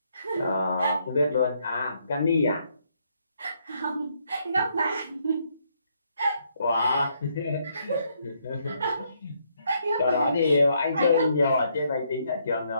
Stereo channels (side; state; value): both; inverted; correlation -0.73